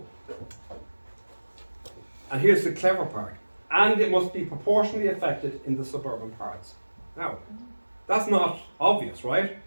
And here's the clever part. And it must be proportionally affected in the suburban parts. Now, that's not obvious, right?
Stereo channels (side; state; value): both; inverted; correlation -1.00